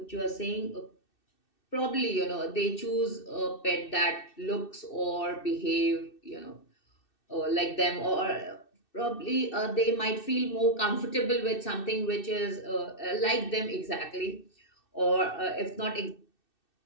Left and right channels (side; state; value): right; late; 2.6 ms